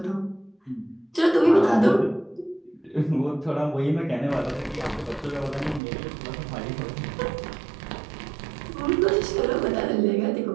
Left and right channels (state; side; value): drops out; left; at 5.8 s